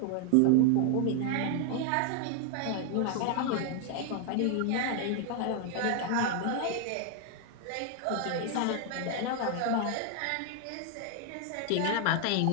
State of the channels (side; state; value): both; different; correlation 0.00